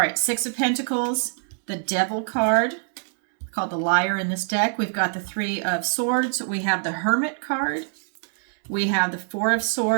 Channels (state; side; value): silent; left; digital silence